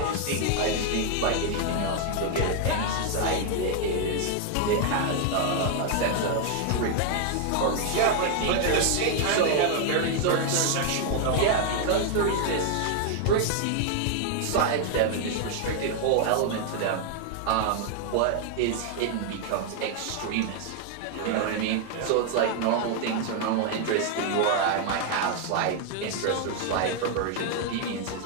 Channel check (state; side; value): different; both; correlation 0.00